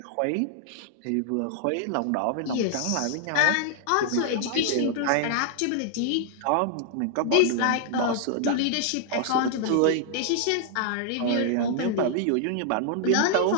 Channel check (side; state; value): both; different; correlation -0.01